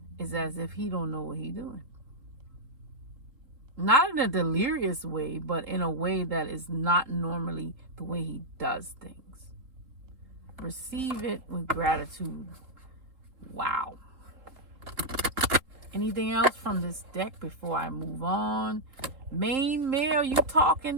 it's as if he don't know what he doing. Not in a delirious way, but in a way that is not normally the way he does things. Receive it with gratitude. Wow. Anything else from this deck before I move on? Main male, you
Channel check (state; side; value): late; left; 3.8 ms